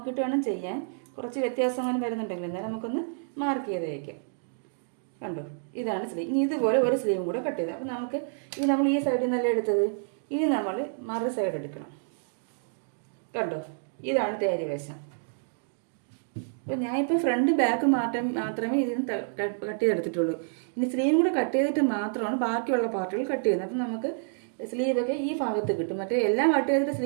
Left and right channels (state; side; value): silent; left; digital silence